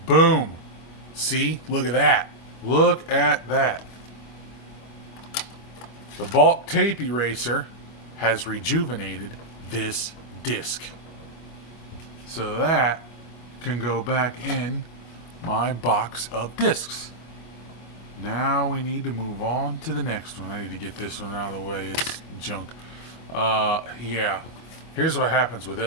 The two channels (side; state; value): right; late; 25 ms